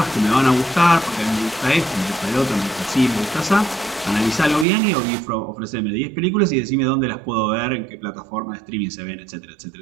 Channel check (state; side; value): drops out; left; at 4.7 s